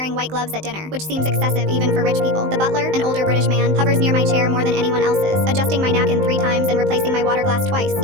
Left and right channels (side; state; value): left; late; 19 ms